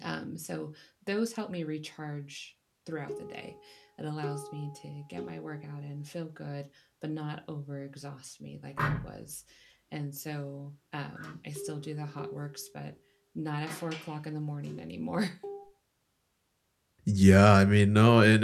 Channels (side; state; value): both; identical; correlation 1.00